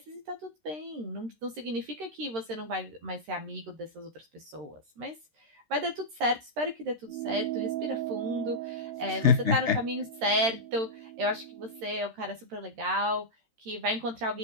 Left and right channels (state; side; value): late; left; 13 ms